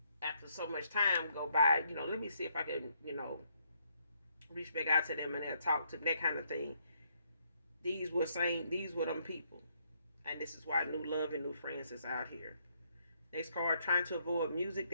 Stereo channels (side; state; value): both; inverted; correlation -0.74